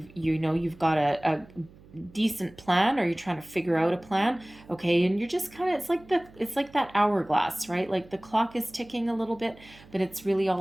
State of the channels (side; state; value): right; noise; hum, 23 dB below the sound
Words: got a decent plan, or you're trying to figure out a plan, okay? And you're just kind of, it's like that hourglass, right? Like the clock is ticking a little bit, but it's really